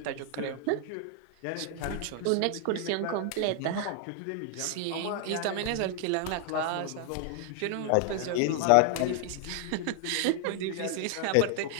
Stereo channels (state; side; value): different; both; correlation 0.00